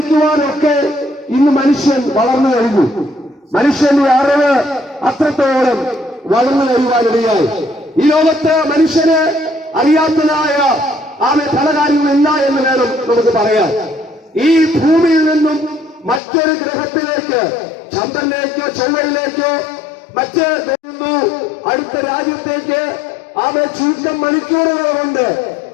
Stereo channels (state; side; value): drops out; right; at 16.2 s